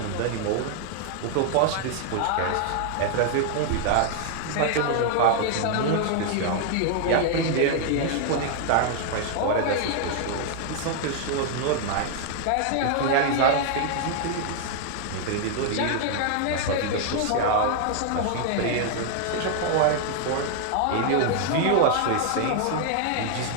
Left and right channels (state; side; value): different; both; correlation 0.00